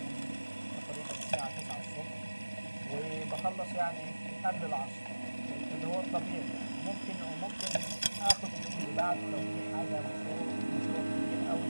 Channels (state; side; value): inverted; both; correlation -1.00